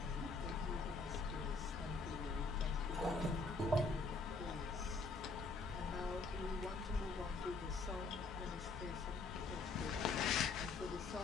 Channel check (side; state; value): right; quieter; 3.9 dB